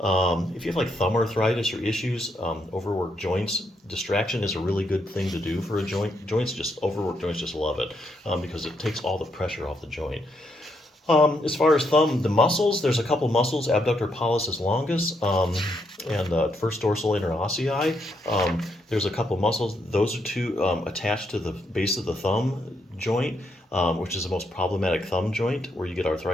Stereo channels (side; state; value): both; normal; correlation 0.77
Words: you have like thumb arthritis or issues, overworked joints, distraction is a really good thing to do for a joint. Overworked joints just love it because it takes all the pressure off the joint. As far as thumb, the muscles, there's a couple muscles, abductor pollicis longus and first dorsal interossei. There's a couple muscles. Those are two attached to the base of the thumb joint, which is the most problematic thumb joint, where you get